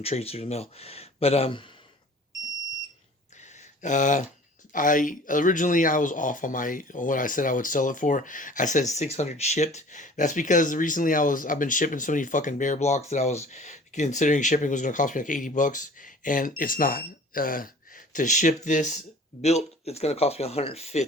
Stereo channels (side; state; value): both; normal; correlation 0.46